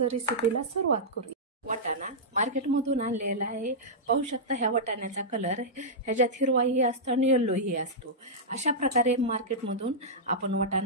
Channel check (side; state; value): both; normal; correlation -0.11